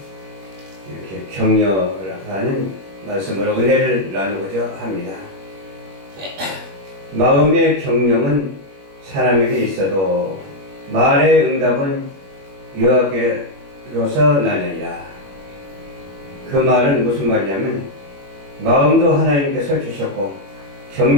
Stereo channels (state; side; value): late; left; 21 ms